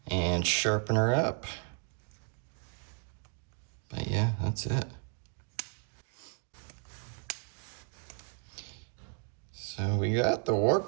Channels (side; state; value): left; quieter; 37.8 dB